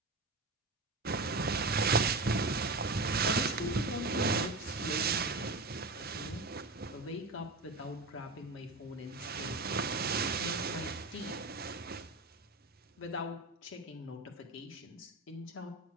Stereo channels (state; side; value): quieter; left; 3.1 dB